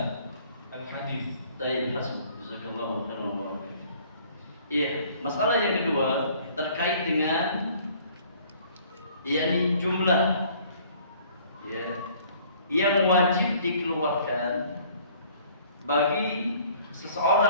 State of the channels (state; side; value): inverted; both; correlation -0.56